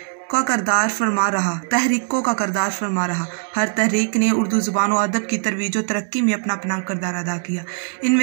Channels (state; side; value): silent; left; 65 dB below the other